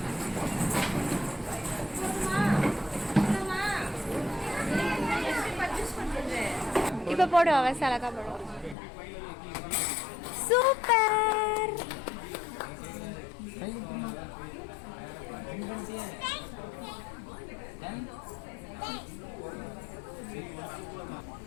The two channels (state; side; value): drops out; right; at 8.8 s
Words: இப்ப போடுவா வசலக்கா போடுவா. சூப்பர்.